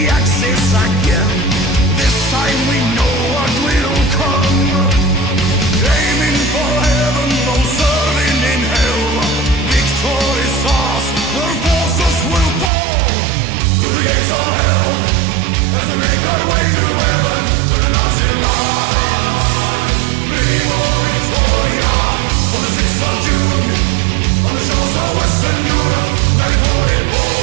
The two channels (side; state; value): left; drops out; at 12.7 s